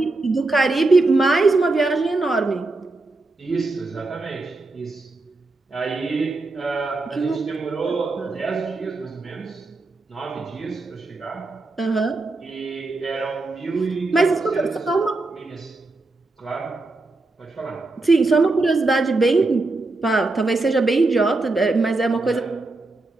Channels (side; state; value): left; quieter; 3.2 dB